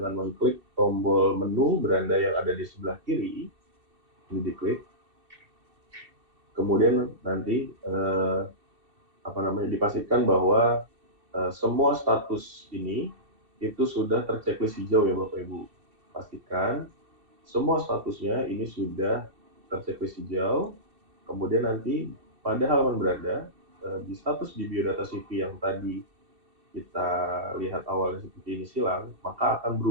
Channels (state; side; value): late; left; 2.6 ms